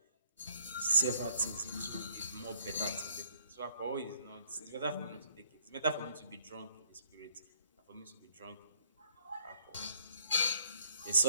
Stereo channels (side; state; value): both; inverted; correlation -0.62